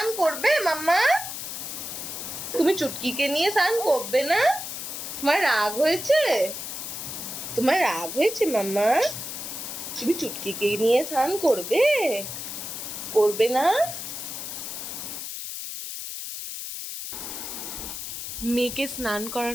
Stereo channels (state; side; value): noise; left; hiss, 7 dB below the sound